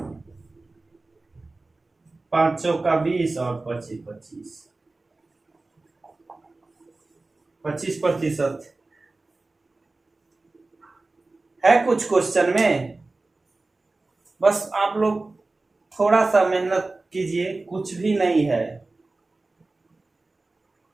5 चौका 20 और 25% है कुछ क्वेश्चन में। बस आप लोग थोड़ा सा मेहनत कीजिए, कुछ भी नहीं है।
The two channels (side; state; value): left; quieter; 3.3 dB